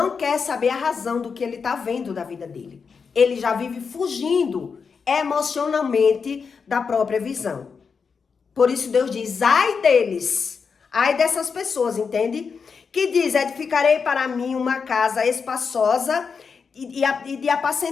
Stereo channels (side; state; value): right; quieter; 5.6 dB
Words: quer saber a razão do que ele está vendo da vida dele. Ele já vive fugindo emocionalmente da própria visão. Por isso Deus diz, ai deles, ai dessas pessoas, entende? Que diz, edificarei para mim uma casa espaçosa e de